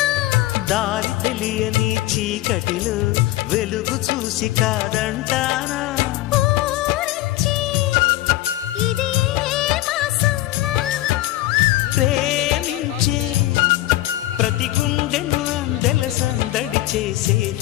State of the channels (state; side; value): quieter; right; 16.3 dB